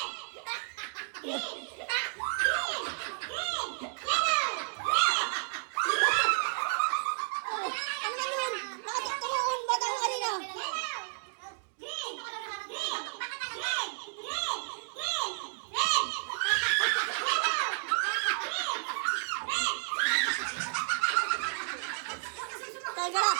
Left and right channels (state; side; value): silent; left; digital silence